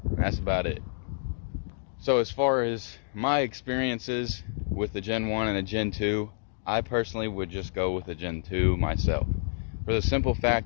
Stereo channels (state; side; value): silent; right; digital silence